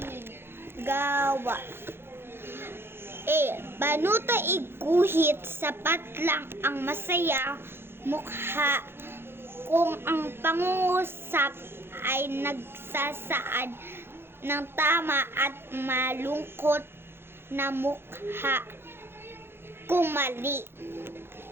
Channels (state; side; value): late; left; 0.11 ms